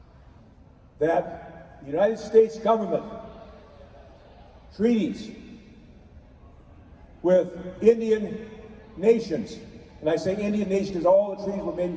that the United States government treaties with Indian nations, and I say Indian nations because all the treaties were made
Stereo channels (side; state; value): both; identical; correlation 1.00